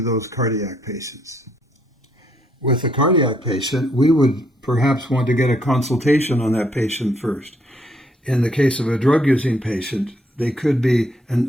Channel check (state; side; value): normal; both; correlation 0.71